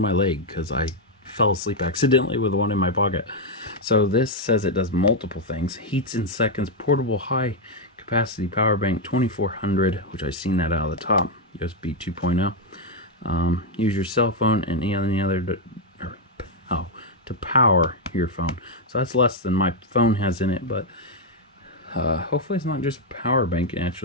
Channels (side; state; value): both; normal; correlation 0.01